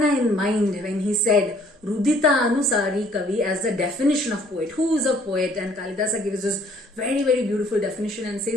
in mind when he said Rudita Anusari Kavi as the definition of poet. Who is a poet? And Kalidasa gives this very, very beautiful definition and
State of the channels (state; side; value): normal; both; correlation 0.59